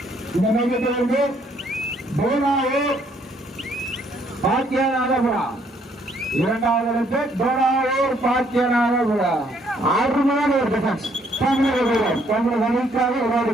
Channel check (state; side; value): normal; both; correlation 0.67